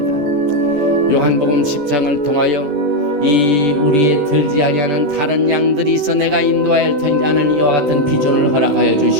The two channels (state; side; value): late; left; 14 ms